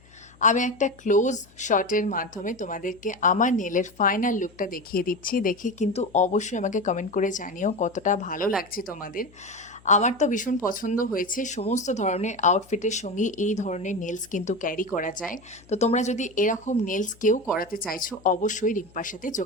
আমি একটা ক্লোজ শটের মাধ্যমে তোমাদেরকে আমার নেলের ফাইনাল লুকটা দেখিয়ে দিচ্ছি। দেখে কিন্তু অবশ্যই আমাকে কমেন্ট করে জানিও কতটা ভালো লাগছে তোমাদের। আমার তো ভীষণ পছন্দ হয়েছে। সমস্ত ধরনের আউটফিটের সঙ্গে এই ধরনের নেলস কিন্তু ক্যারি করা যায়। তো তোমরা যদি এরকম নেলস কেউ করাতে চাইছো অবশ্যই রিম্পার সাথে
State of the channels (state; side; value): noise; left; hum, 27 dB below the sound